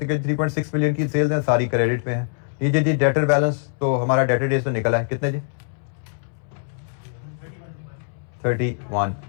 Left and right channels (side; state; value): right; silent; 63 dB below the other